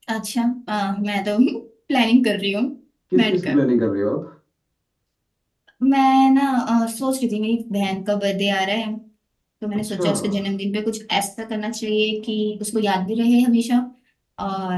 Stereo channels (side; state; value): both; identical; correlation 1.00